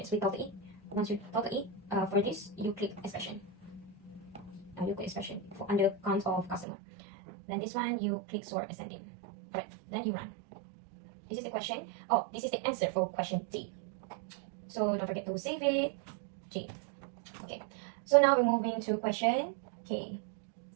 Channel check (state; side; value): drops out; left; at 6.7 s